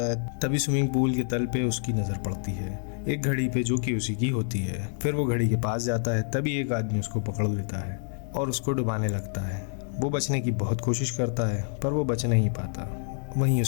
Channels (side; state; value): right; silent; 60 dB below the other